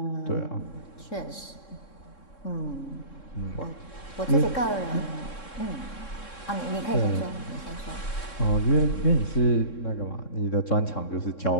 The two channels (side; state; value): right; late; 3.7 ms